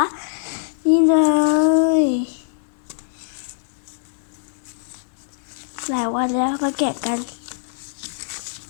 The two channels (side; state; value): right; silent; 64 dB below the other